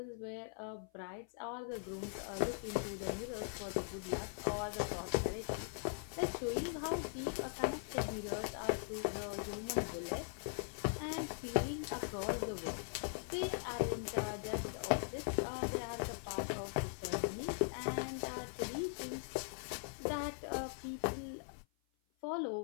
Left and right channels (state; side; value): silent; right; 50 dB below the other